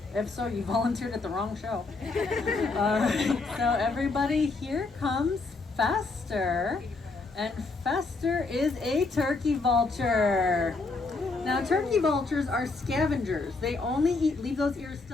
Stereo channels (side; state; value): right; quieter; 3.7 dB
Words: If so, you volunteered at the wrong show. So everybody, here comes Fester. And Fester is a turkey vulture. Now, turkey vultures are scavengers. They only eat, leave those ears